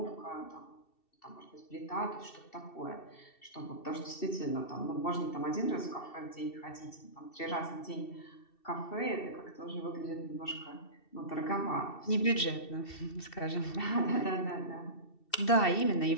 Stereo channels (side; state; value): right; late; 2.7 ms